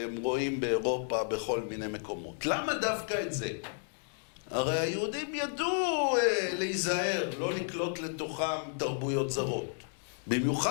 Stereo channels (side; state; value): right; silent; 56 dB below the other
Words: רואים באירופה בכל מיני מקומות? למה דווקא את זה? הרי היהודים ידעו להיזהר, לא לקלוט לתוכם תרבויות זרות.